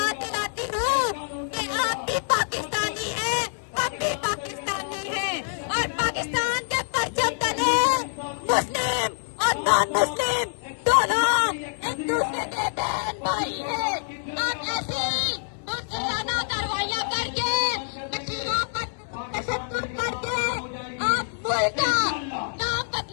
दिलाती हूँ कि आप भी पाकिस्तानी हैं, हम भी पाकिस्तानी हैं, और पाकिस्तान के परचम तले मुस्लिम और नॉन मुस्लिम दोनों एक दूसरे के बहन भाई हैं। आप ऐसी मुस्लिमाना कार्रवाइयाँ करके मशीनों पर तशद्दुद करके आप मुल्क का नाम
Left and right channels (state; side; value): silent; right; digital silence